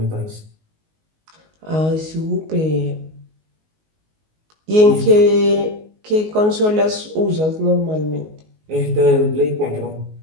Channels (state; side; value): late; left; 19 ms